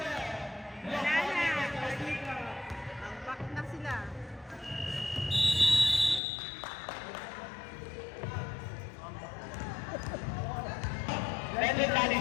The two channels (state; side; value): drops out; right; at 6.2 s